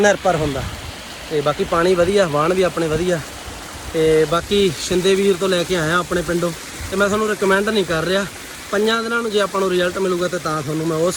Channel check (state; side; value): identical; both; correlation 1.00